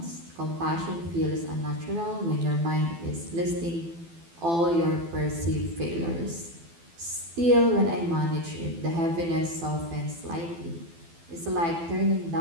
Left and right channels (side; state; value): left; late; 12 ms